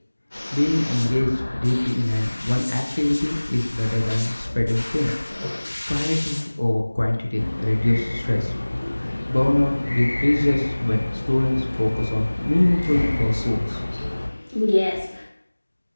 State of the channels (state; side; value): inverted; both; correlation -1.00